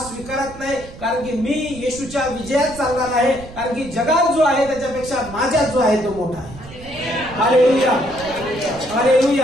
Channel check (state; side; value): noise; right; rumble, 16 dB below the sound